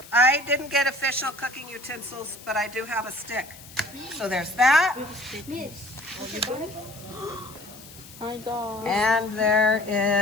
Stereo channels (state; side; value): noise; left; hiss, 18 dB below the sound